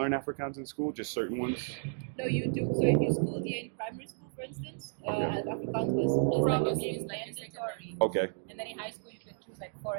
Afrikaans in school, just certain ones? No, you do. So if you schooled here in primary school, for instance, Okay. Afrikaans was probably mandatory. Okay. And then in high school, you can choose like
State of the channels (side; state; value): left; silent; digital silence